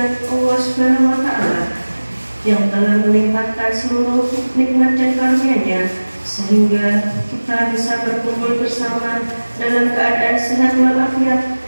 Allah Subhanahu wa taala yang telah melimpahkan seluruh nikmat dan karunia-Nya sehingga kita bisa berkumpul bersama dalam keadaan sehat walafiat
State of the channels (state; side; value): inverted; both; correlation -1.00